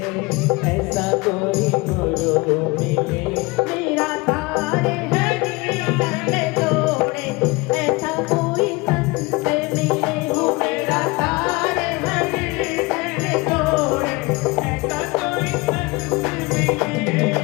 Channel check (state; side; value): quieter; right; 24.8 dB